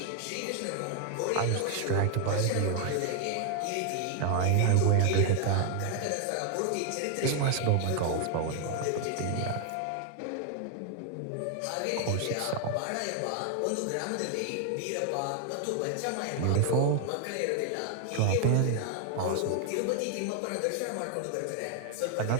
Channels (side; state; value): both; different; correlation 0.00